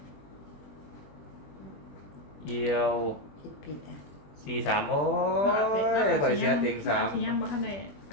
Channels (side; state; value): right; late; 21 ms